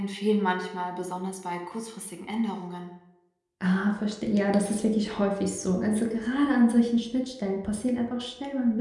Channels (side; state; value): both; identical; correlation 1.00